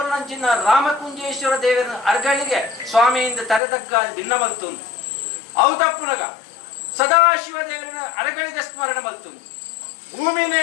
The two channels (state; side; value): drops out; right; at 3.6 s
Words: ರಾಮಕುಂಜೇಶ್ವರ ದೇವರ ಅರಗಳಿಗೆ ಸ್ವಾಮಿಯಿಂದ ತರೆದಗ್ಗ ಭಿನ್ನ ಮಲ್ತುಂದು ಹೌದಪ್ಪುನಗ ಸದಾಶಿವ ದೇವರನ್ನ ಅರಗಳಿಗೆ ಸ್ಮರಣೆ ಮಲ್ತುಂದು ಭೂಮಿನೇ